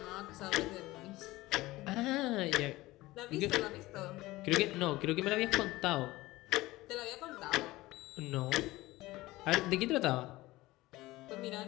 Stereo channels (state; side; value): quieter; right; 18.8 dB